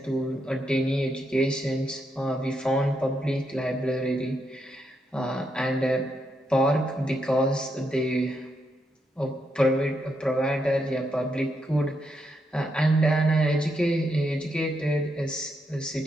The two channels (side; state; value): both; normal; correlation 0.80